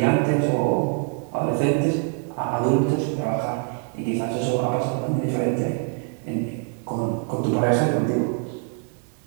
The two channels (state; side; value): quieter; left; 39.2 dB